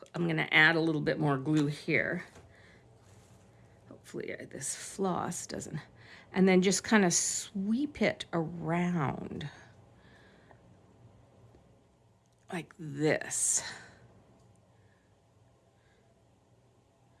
I'm going to add a little bit more glue here. Hopefully this floss doesn't. And then just kind of sweep it around like this.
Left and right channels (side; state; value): both; identical; correlation 1.00